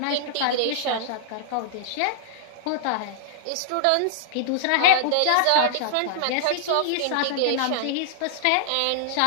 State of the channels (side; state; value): both; different; correlation -0.01